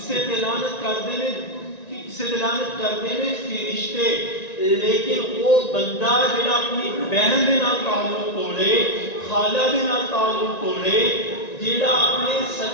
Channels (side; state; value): right; late; 1.9 ms